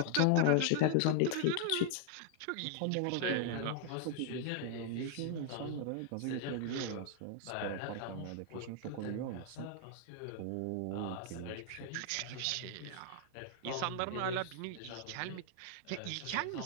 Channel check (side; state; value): both; different; correlation 0.00